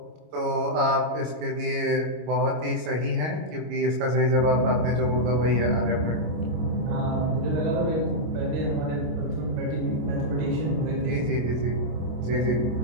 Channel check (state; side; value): late; left; 25 ms